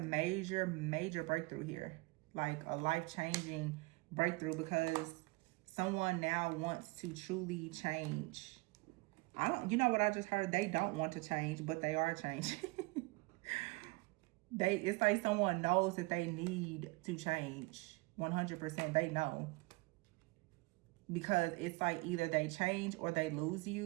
major breakthrough here. Like a life-changing breakthrough because someone now wants to truly change. You know what I just heard? They don't want to change, but they are changing. It's like someone knows that they need to change. 100%, they know. Because it's like either they change or they lose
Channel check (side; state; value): left; quieter; 25.2 dB